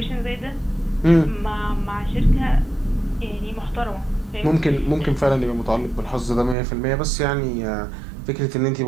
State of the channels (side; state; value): left; drops out; at 6.6 s